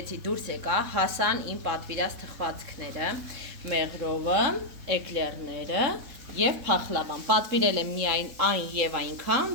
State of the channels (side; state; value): left; late; 3.7 ms